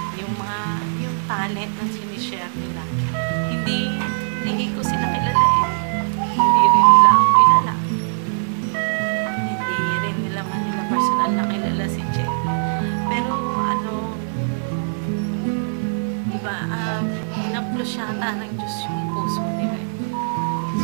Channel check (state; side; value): silent; left; 58 dB below the other